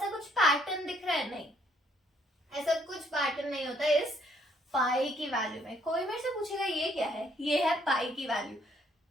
कुछ पैटर्न दिख रहा है? नहीं, ऐसा कुछ पैटर्न नहीं होता इस पाई की वैल्यू में। कोई मेरे से पूछेगा ये क्या है, ये है पाई की value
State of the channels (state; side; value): normal; both; correlation 0.67